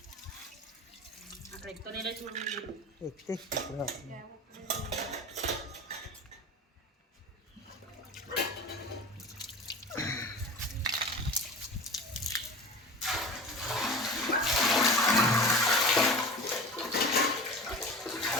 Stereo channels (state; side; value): normal; both; correlation 0.34